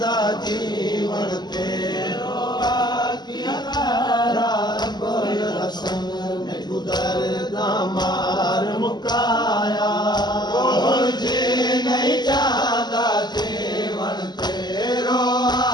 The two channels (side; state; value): right; late; 0.21 ms